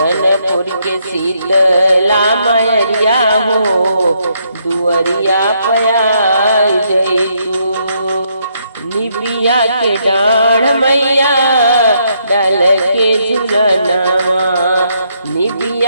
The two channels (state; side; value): inverted; both; correlation -0.74